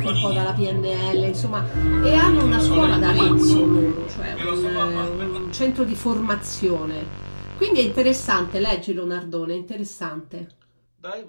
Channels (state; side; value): inverted; both; correlation -1.00